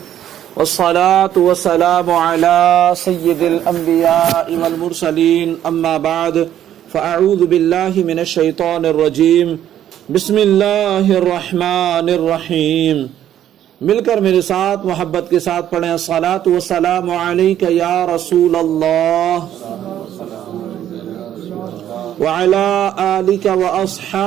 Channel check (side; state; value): left; quieter; 11.1 dB